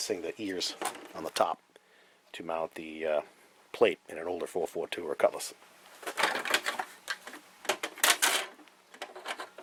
the ears on the top to mount the plate in an older 442 or Cutlass.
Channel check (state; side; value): identical; both; correlation 1.00